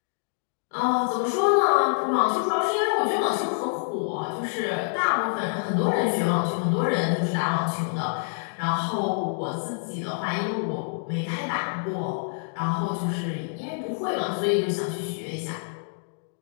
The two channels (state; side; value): silent; right; digital silence